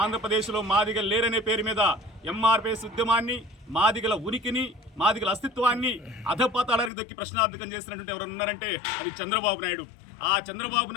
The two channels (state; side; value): drops out; right; at 6.9 s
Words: మాదిగలు లేరనే పేరు మీద ఎంఆర్పీఎస్ ఉద్యమాన్ని, మాదిగల ఉనికిని, మాదిగల అస్తిత్వాన్ని అధపాతాళానికి దొక్కి ప్రశ్నార్థకం చేసినటువంటి ఎవరు ఉన్నారంటే అది చంద్రబాబు నాయుడు. ఆ చంద్రబాబు